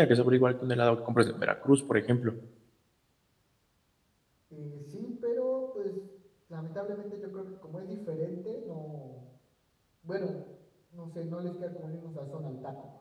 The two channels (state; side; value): identical; both; correlation 1.00